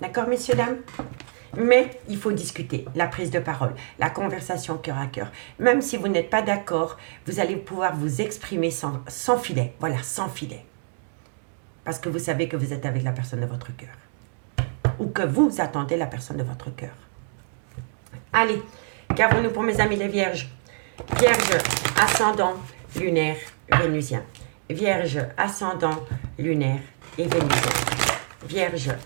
D'accord, messieurs, dames? Mais il faut discuter, la prise de parole, la conversation cœur à cœur. Même si vous n'êtes pas d'accord, vous allez pouvoir vous exprimer sans filet. Voilà, sans filet. Parce que vous savez que vous êtes avec la personne de votre cœur. Ou que vous attendez la personne de votre cœur. Allez, qu'avons-nous pour mes amis les vierges? Vierge, ascendant, lunaire, vénusien. Vierge, ascendant, lunaire et vénusien. Vierge,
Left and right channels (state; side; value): silent; left; digital silence